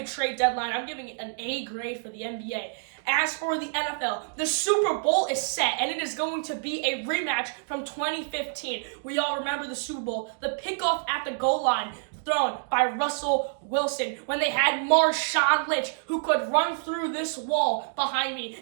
trade deadline. I'm giving it an A grade for the NBA. As for the NFL, the Super Bowl is set, and it is going to be a rematch from 2015. We all remember the Super Bowl, the pickoff at the goal line thrown by Russell Wilson when they had Marshawn Lynch, who could run through this wall behind me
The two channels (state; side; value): silent; left; digital silence